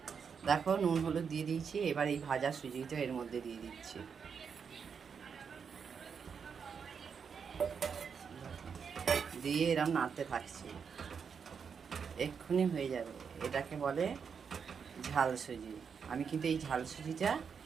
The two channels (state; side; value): quieter; left; 6.4 dB